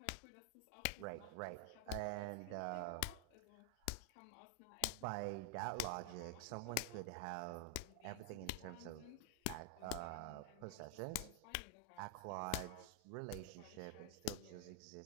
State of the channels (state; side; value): different; both; correlation 0.00